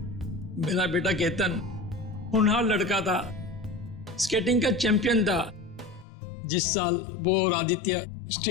मेरा बेटा केतन होनहार लड़का था, स्केटिंग का चैंपियन था। जिस साल वो और आदित्य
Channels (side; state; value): right; drops out; at 6.1 s